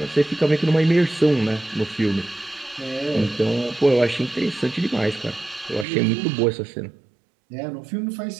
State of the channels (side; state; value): left; drops out; at 5.9 s